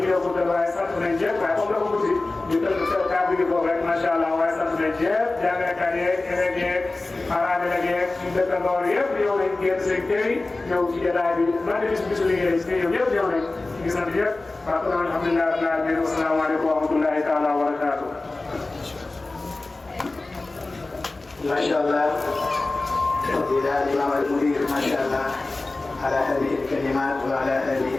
ñu yokku waaye sant nañ ñëpp waaye comme dafa guddi ñu tënk seen kàddu gi foofu rek macha allah waaye sant nañ ñëpp jàngalekat yeeg élèves yeeg parents yeeg suñu dëkkandoor yëpp ñëw nañ génn seen kër yi ñëw ci jotaay bi man de bisu liggéey si ñoom ñëpp ñëw nañ ñu ngi sant ñëpp waaw kon alhamdulilah rabbil alamin wa salaamaaleykum wa rahmatullahi taala wa barakatuh ما شاء الله فضيلة الإمام المدير ما شاء الله على هذه الكلمات وعلى هذه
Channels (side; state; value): right; quieter; 3.2 dB